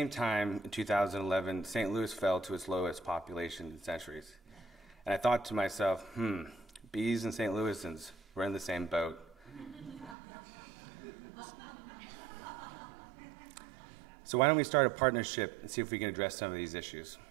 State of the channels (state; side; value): drops out; left; at 10.2 s